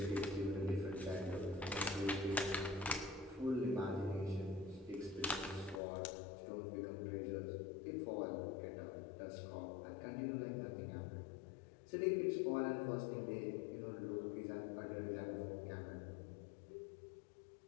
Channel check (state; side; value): drops out; right; at 5.8 s